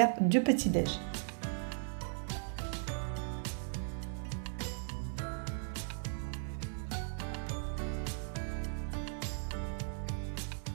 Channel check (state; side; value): silent; left; digital silence